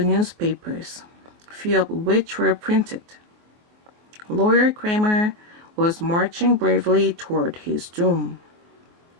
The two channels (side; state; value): left; late; 24 ms